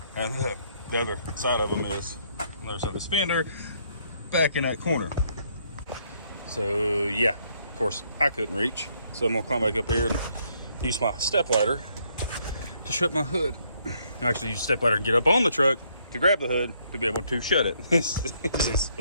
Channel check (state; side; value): inverted; both; correlation -0.70